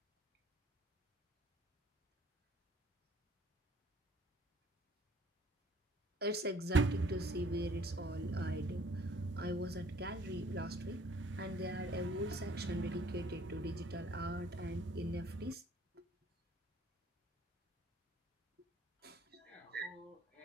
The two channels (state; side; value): normal; both; correlation 0.58